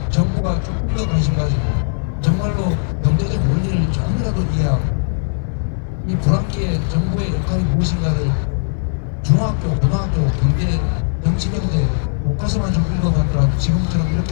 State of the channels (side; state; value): right; silent; 61 dB below the other